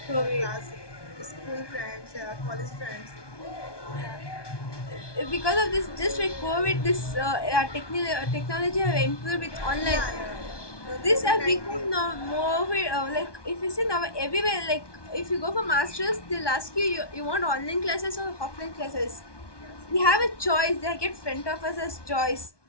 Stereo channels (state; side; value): late; right; 1.2 ms